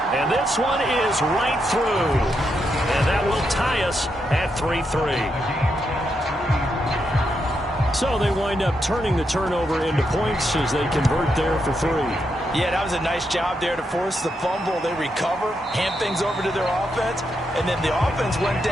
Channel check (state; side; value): normal; both; correlation 0.82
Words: And this one is right through. And that will tie us at 3-3. So they wind up turning the turnover into points as they convert there for 3. Yeah, that was a nice job there to force the fumble. They recover, hand things over to their offense, and then the offense went